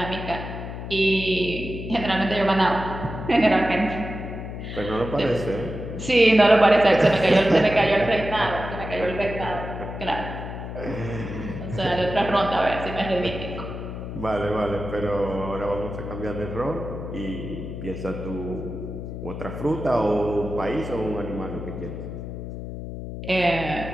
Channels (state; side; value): noise; left; hum, 8 dB below the sound